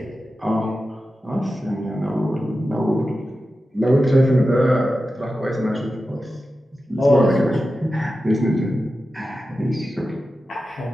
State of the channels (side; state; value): both; normal; correlation 0.92